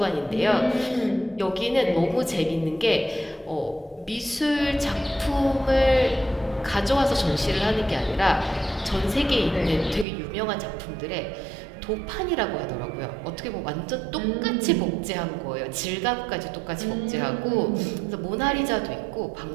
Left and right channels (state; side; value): drops out; left; at 10.1 s